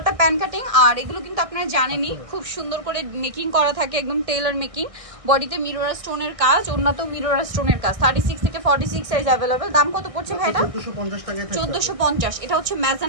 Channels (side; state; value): left; late; 1.6 ms